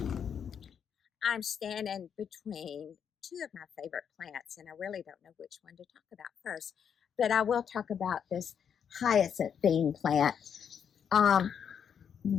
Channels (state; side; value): quieter; right; 7.7 dB